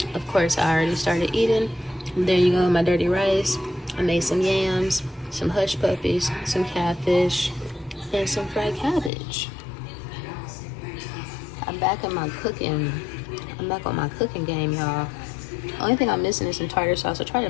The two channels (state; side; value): drops out; right; at 9.1 s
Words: Of course, I already started eating. There you go, my dirty rice. I made some yams, some hush puppies, some catfish, and some fried cabbage. I'm back on my cooking game, y'all. Only thing I'm missing is some tartar sauce. I tried to